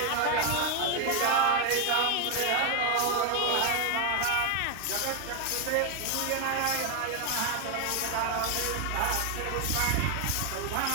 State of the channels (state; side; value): different; both; correlation 0.01